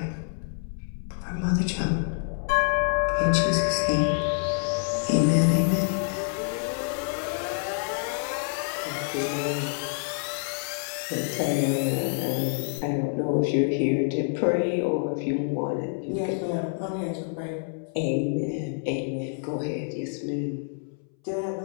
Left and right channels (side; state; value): right; silent; 60 dB below the other